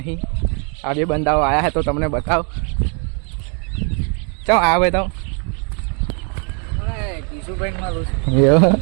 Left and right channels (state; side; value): quieter; left; 37.9 dB